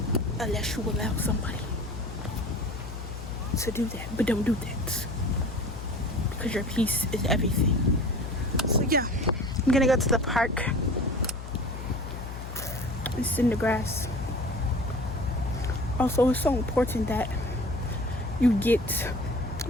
unless you allow somebody to do that. But don't do that, because your peace is everything. So yeah, I'm gonna go to the park and sit in the grass. Also, it's so important that you get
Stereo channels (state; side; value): noise; left; hum, 9 dB below the sound